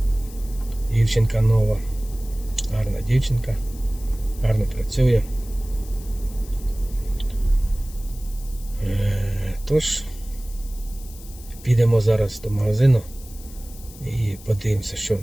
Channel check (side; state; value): left; noise; hiss, 19 dB below the sound